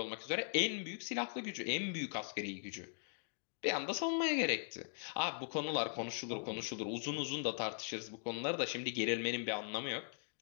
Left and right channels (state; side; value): silent; right; digital silence